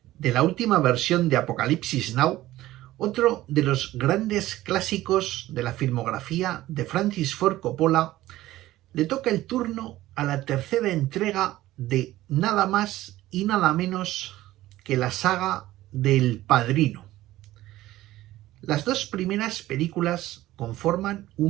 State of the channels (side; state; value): left; quieter; 15.8 dB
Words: de la última versión de Apocalipsis Now, otro de los grandes clásicos de la filmografía de Francis Ford Coppola, le toca el turno a la tercera entrega de nada más y nada menos que la saga del Padrino. Las dos primeras películas conforman